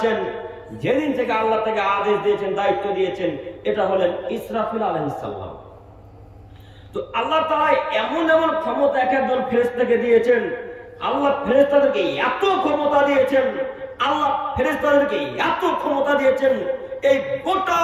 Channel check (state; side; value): identical; both; correlation 1.00